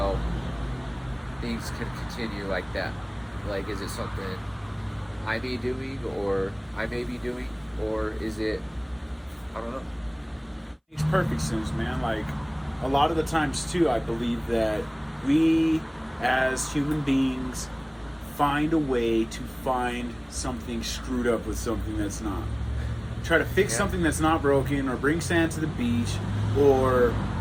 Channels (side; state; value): both; identical; correlation 1.00